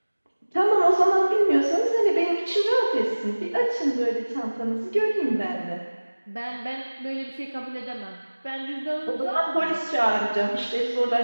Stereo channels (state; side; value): inverted; both; correlation -1.00